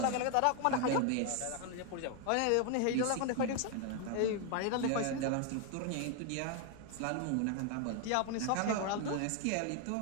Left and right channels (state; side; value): different; both; correlation 0.01